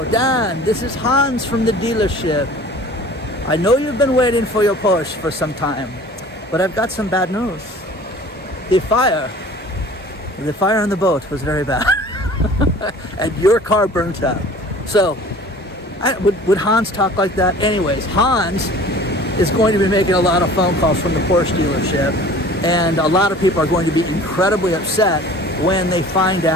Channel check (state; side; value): normal; both; correlation 0.45